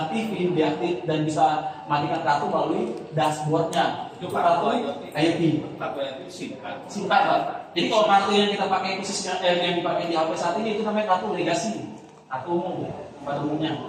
deaktif, dan bisa matikan kartu melalui dashboardnya. Itu kartu IoT. Kartu itu singkat. Singkat lah. Jadi kalau kartu yang kita pakai khususnya yang dipakai di HP saat ini itu namanya kartu legasi, kartu umum, pada umumnya.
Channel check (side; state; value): both; identical; correlation 1.00